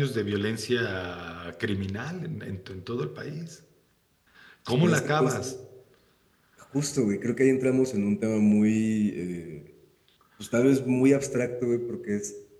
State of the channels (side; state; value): both; identical; correlation 1.00